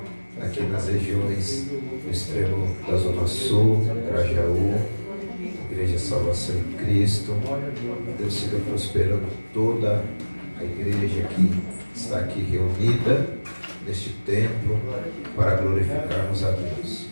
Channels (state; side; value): inverted; both; correlation -1.00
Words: aqui nas regiões do extremo da Zona Sul, Grajaú, Igreja Salvação em Cristo. Deus siga prosperando toda a igreja que está aqui reunida neste templo para glorificarmos a Deus.